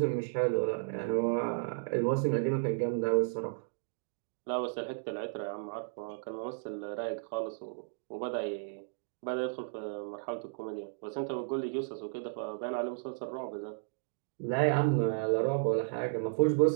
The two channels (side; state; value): left; silent; digital silence